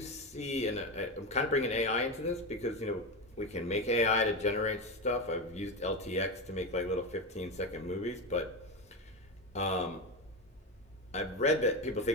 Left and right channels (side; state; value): both; normal; correlation 0.17